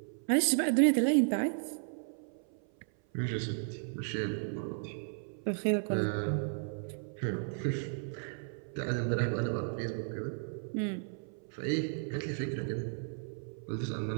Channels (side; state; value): left; silent; 55 dB below the other